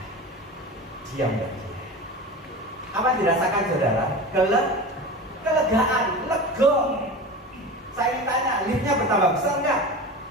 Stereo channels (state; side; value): normal; both; correlation 0.30